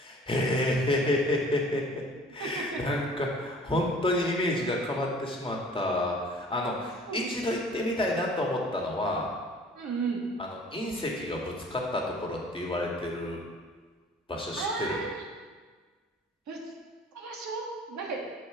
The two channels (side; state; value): both; normal; correlation 0.50